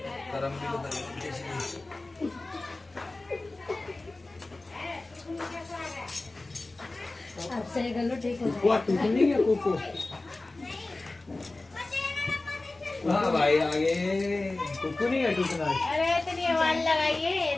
गरम भी तो अब सही कर लो, ठीक हो कुकू टूट नहीं गया कुकू। हाँ भाई आगे कुकू नहीं है टूटना। अरे इतनी आवाज लगाइए, ये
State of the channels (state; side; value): quieter; right; 3.1 dB